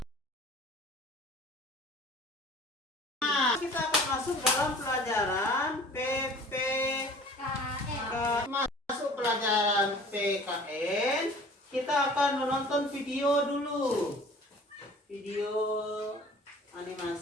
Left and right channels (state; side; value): normal; both; correlation 0.46